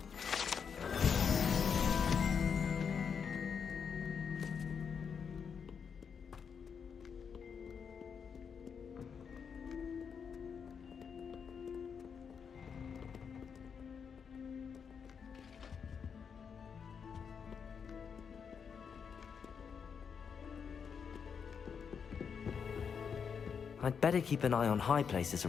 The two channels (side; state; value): right; quieter; 6.6 dB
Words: I'd better keep an eye on high places